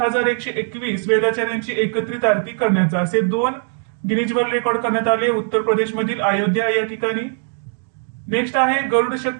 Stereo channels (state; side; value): silent; left; 62 dB below the other